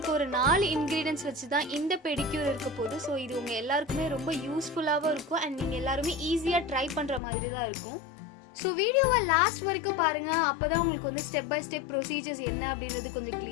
ஒரு 4 ingredients வச்சு தான் இந்த பெடிக்யூர் இருக்க போகுது. சோ இது உங்க எல்லாருக்குமே ரொம்ப யூஸ்ஃபுல்லாவும் இருக்கும் and நீங்க எல்லாரும் ஈஸியா ட்ரை பண்ற மாதிரி தான் இருக்கும். ஸோ வீடியோவை லாஸ்ட் வரைக்கும் பாருங்கள், அப்போ தான் உங்களுக்கு வந்து ஸ்டெப் பை ஸ்டெப் ப்ரொசீஜர்ஸ் என்ன அப்படின்றது கொஞ்சம்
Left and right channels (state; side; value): drops out; right; at 7.2 s